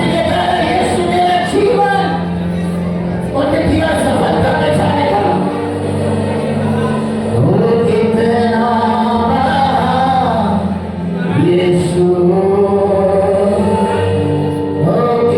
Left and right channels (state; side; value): identical; both; correlation 1.00